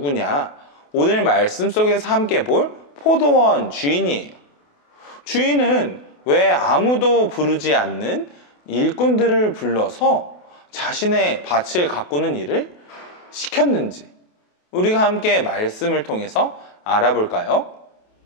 오늘 말씀 속에서 함께 볼 포도원 주인이에요. 주인은 왜 아무도 부르지 않는 일꾼들을 불러서 자신의 밭을 가꾸는 일을 시켰는지 우리가 함께 말씀을 통해서 알아볼까요?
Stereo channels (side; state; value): right; late; 28 ms